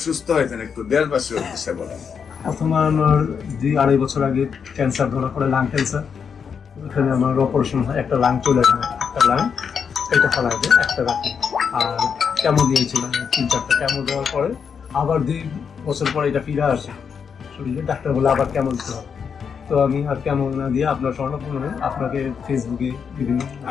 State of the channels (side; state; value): right; quieter; 6.6 dB